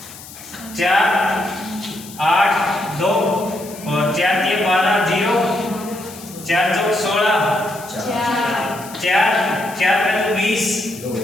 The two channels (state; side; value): noise; left; hiss, 16 dB below the sound